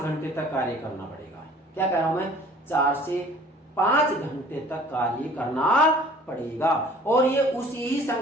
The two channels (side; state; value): both; normal; correlation 0.51